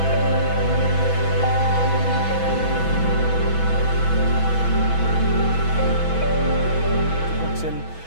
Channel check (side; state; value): right; late; 6.1 ms